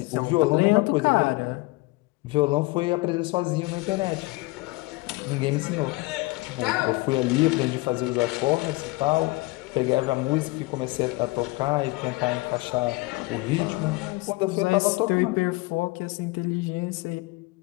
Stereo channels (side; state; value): right; quieter; 23.3 dB